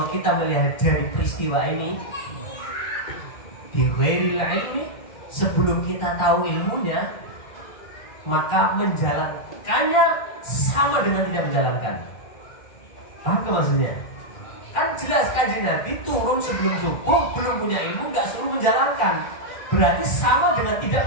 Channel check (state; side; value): late; right; 2.1 ms